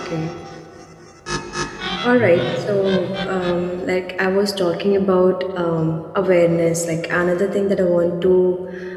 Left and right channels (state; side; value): identical; both; correlation 1.00